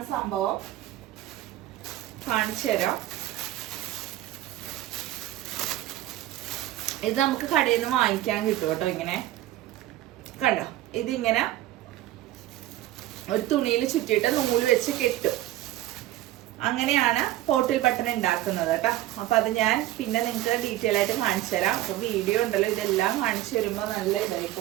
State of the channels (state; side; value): quieter; left; 14.8 dB